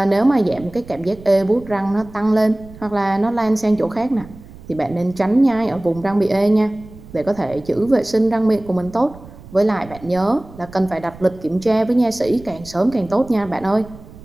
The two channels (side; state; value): right; noise; rumble, 19 dB below the sound